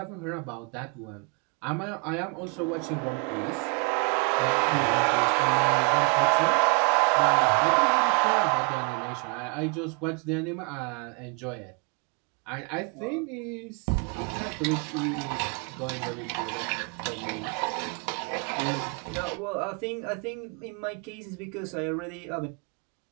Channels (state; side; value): quieter; left; 36.3 dB